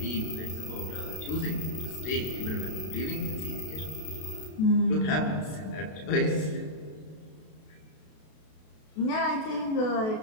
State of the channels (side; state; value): right; late; 32 ms